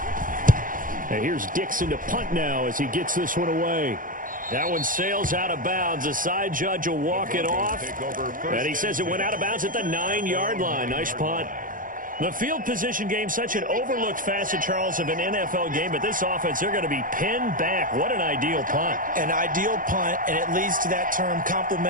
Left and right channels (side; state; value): left; late; 0.40 ms